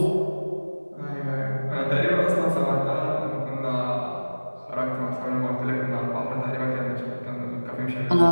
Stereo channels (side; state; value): both; inverted; correlation -1.00